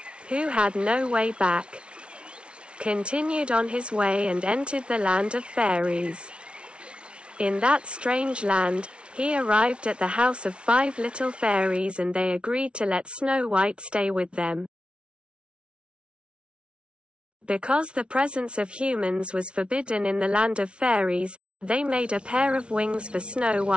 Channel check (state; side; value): late; left; 0.058 ms